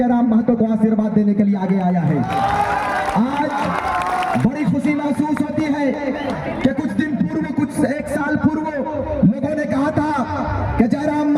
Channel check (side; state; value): both; identical; correlation 1.00